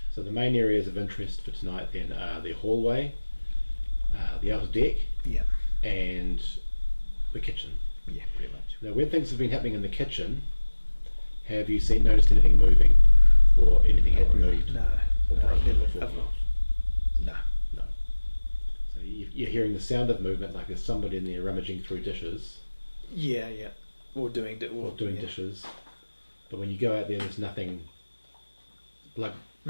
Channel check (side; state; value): both; inverted; correlation -1.00